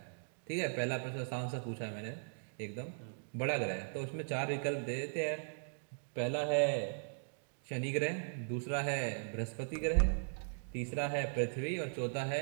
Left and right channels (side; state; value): left; silent; digital silence